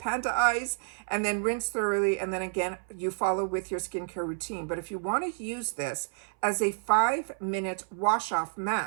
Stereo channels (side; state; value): left; silent; 58 dB below the other